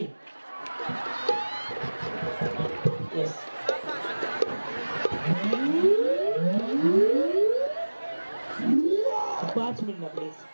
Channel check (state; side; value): inverted; both; correlation -1.00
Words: येस. पाँच मिनट प्लीज